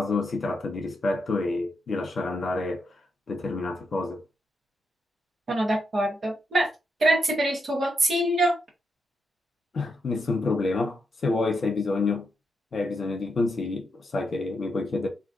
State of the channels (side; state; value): both; normal; correlation 0.82